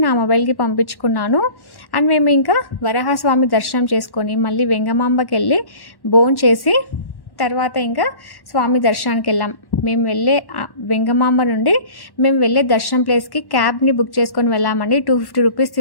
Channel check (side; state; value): right; late; 1.1 ms